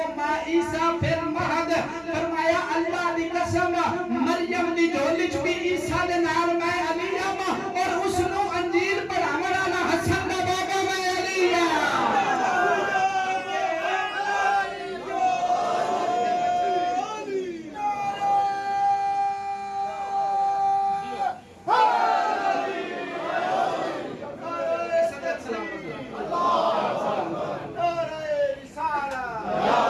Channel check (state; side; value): identical; both; correlation 1.00